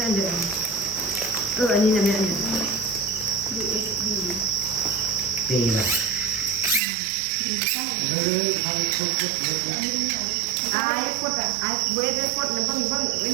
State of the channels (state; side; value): drops out; left; at 6.8 s